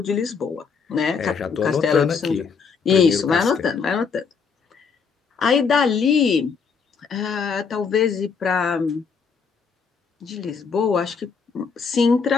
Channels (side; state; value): right; quieter; 5.7 dB